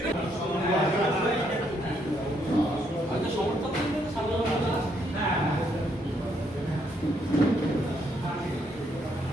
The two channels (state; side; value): normal; both; correlation 0.73